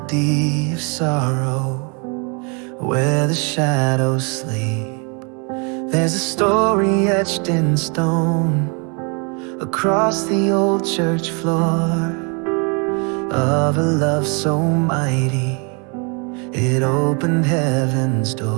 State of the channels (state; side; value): quieter; left; 34.7 dB